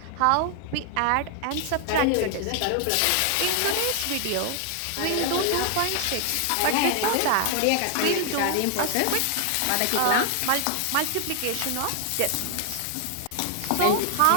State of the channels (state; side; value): different; both; correlation 0.00